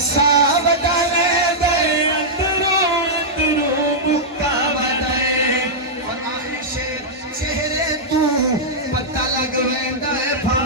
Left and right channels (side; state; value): both; normal; correlation -0.09